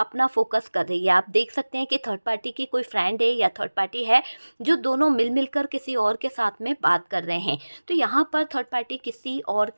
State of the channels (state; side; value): inverted; both; correlation -1.00